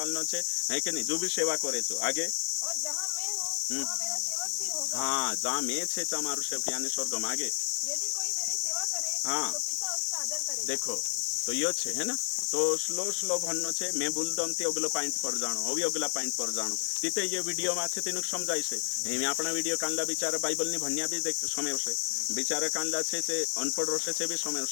छे है कि नहीं जो भी सेवा करे छो आगे और जहाँ मैं हूँ वहाँ मेरा सेवक भी होगा हाँ जहाँ मैं छे तमारू सेवक यानी स्वर्ग में आगे यदि कोई मेरी सेवा करे हाँ। तो पिता उसका आदर करेगा देखो तो यो छे है ना तो स्लो स्लो भन्नो छे मैं बोलदम ते अगलो पॉइंट पर जाणो अभी अगला पॉइंट पर जाणो तिते ये वीडियो में छे तेनु समजाय छे एमे आपणा वीडियो कांला बिचारा बाइबल नि भन्या भी देख समय छे बिचारा कांला छे ते अनपढ़ रसे छे भी समय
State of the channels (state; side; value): silent; right; 57 dB below the other